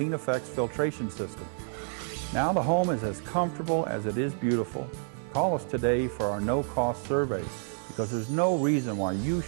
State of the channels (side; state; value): left; silent; 58 dB below the other